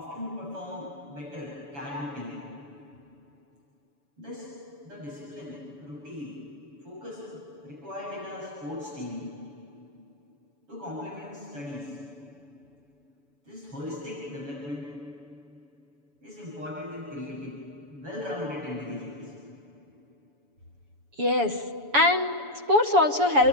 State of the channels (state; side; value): late; left; 7.0 ms